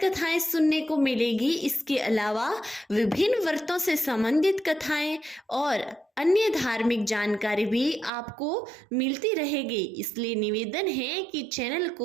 कथाएं सुनने को मिलेगी। इसके अलावा विभिन्न व्रतों से संबंधित कथाएं और अन्य धार्मिक जानकारी भी आपको मिलती रहेगी। इसलिए निवेदन है कि चैनल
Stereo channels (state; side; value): drops out; left; at 8.1 s